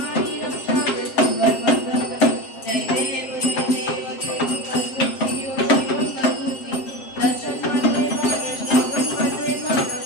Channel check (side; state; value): right; late; 7.6 ms